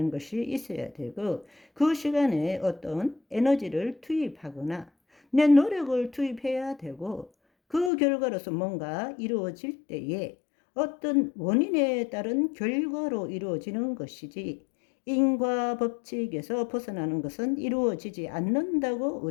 것이 있어야 되고 그 시간에 어떤 에너지를 투입하거나 내 노력을 투입해야 되고 그 결과로서 뭔가 이루어질 때에 어떤 원인에 따른 결과로 이루어지는 것이지 인과 법칙에서 벗어나는 것은 이루어지지 않는다고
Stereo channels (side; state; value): right; drops out; at 7.9 s